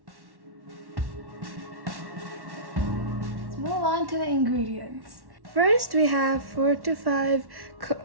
Let's move on to the ingredients. First we have 4 to 5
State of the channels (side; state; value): left; late; 1.1 ms